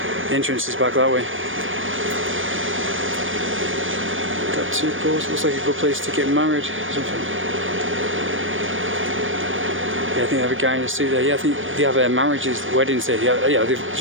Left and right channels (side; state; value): left; late; 0.57 ms